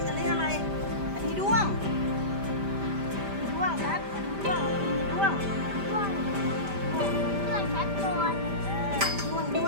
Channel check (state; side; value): late; left; 5.0 ms